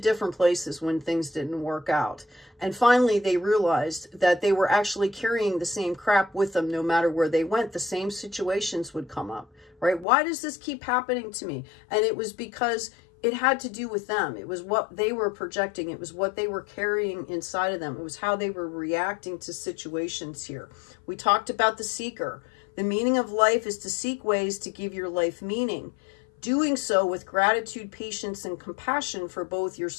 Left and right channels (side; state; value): right; drops out; at 10.1 s